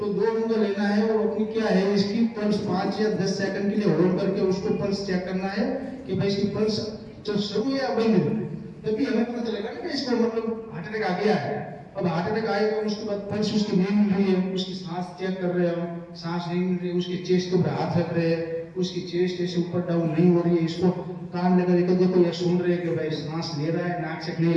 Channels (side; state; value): both; identical; correlation 1.00